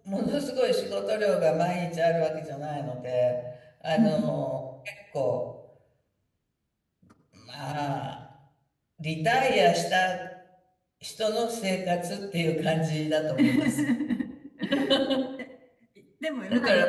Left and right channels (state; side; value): identical; both; correlation 1.00